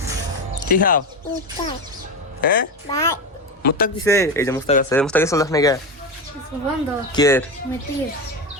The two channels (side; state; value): both; normal; correlation 0.18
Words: কি খাও হ্যাঁ মুস্তাক দিছে এই যে মুস্তাক আছে মুস্তাক চলে যাস নাকি কে